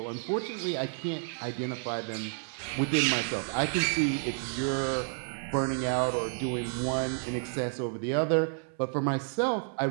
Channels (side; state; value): left; silent; 57 dB below the other